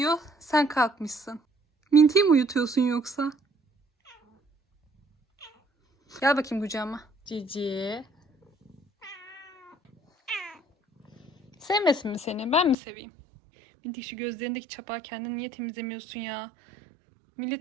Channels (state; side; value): drops out; left; at 12.8 s